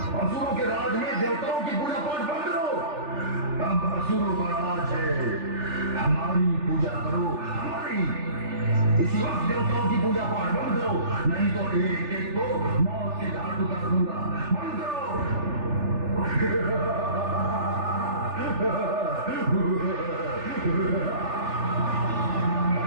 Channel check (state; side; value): late; left; 3.4 ms